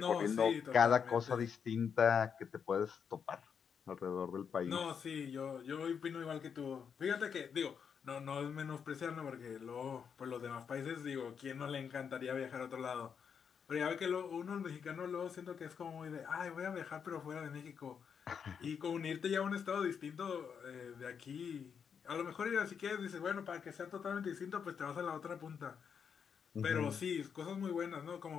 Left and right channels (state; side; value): quieter; right; 7.0 dB